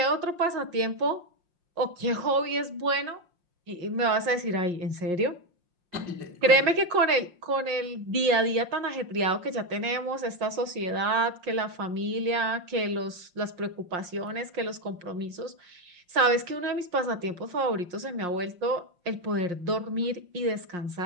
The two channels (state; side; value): late; left; 5.6 ms